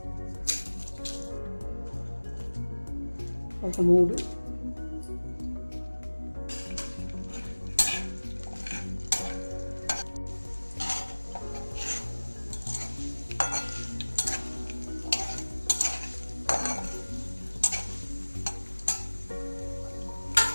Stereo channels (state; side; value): inverted; both; correlation -1.00